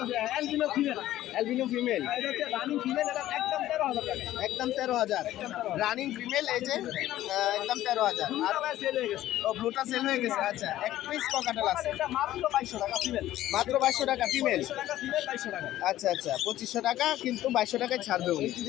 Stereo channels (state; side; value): quieter; right; 14.0 dB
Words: অ্যালবিনো ফিমেল, অ্যালবিনো ফিমেল, এটা হচ্ছে রানিং ফিমেল, এটা একদম 13,000 টাকা। একদম 13,000। রানিং ফিমেল, এই যে একদম 13,000। আর দুটো ভাই সেল হয়ে গেছে। ও, ব্লুটা সেল হয়ে গেছে। আচ্ছা, এক পিস ককাটেল আছে, এটা মাত্র 2200 টাকা ফিমেল। মাত্র 2200 টাকা ফিমেল। 2200 টাকা ফিমেল, 2200 টাকা। আচ্ছা আচ্ছা, 2500 টাকা, কিন্তু 2200 টাকায় ছাড়বে উনি।